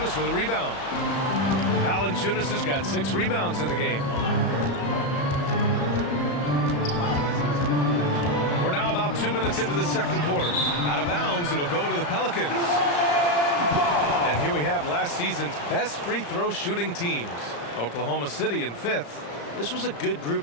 with a rebound. Valanciunas has got 6 rebounds in the game. We're now about 2 minutes into the second quarter. Out of bounds, it'll go to the Pelicans. And here we have last season's best free throw shooting teams. Oklahoma City in 5th. This was a good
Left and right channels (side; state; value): right; late; 35 ms